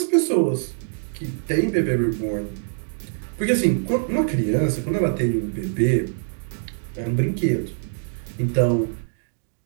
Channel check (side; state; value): left; silent; digital silence